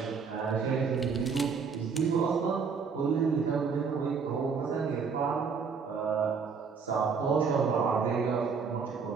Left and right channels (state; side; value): quieter; left; 5.6 dB